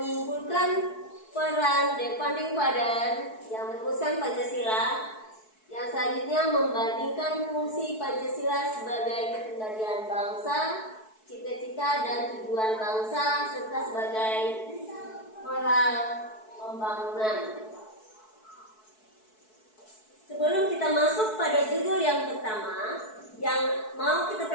peran Devanding Father yang merumuskan Pancasila, yang selanjutnya membandingkan fungsi Pancasila sebagai kendalian bangsa, cita-cita dan tujuan bangsa, serta sebagai moral pembangunan. Sebelum kita masuk pada judul yang pertama yang mau kita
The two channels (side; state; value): right; late; 4.6 ms